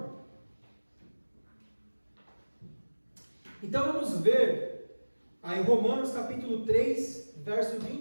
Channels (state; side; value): inverted; both; correlation -1.00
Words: Então vamos ver aí Romanos capítulo 3, versos